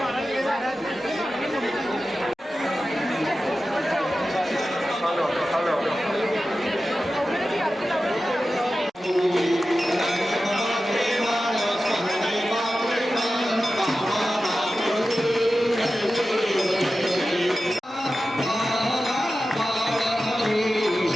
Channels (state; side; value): normal; both; correlation 0.94